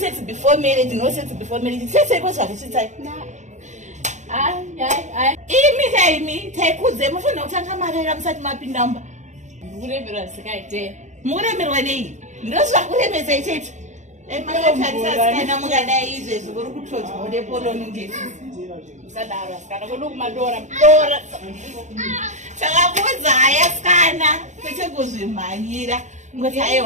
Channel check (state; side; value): late; left; 0.35 ms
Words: before marriage, no sex before marriage. Sese kwazva kuchitai. Imi taikudze mufanira kutanga marera musati mapindamba. Muremerwa sikaite. Muremerwa nei? Ndozvakuremesa ichecho. Makatarisa mungadai izvezvi kuri kutodzwa nepoloni ndisi. Musadaro asikana kwedu kumadora. Takakudza yasikana kwete kuzvimhanyira. Ngoti